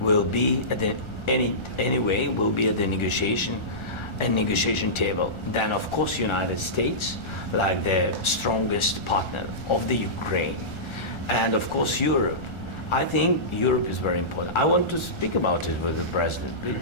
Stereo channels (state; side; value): late; right; 1.4 ms